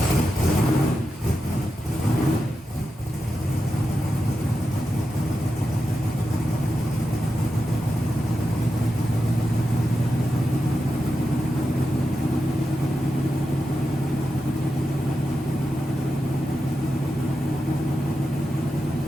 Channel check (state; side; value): normal; both; correlation 0.89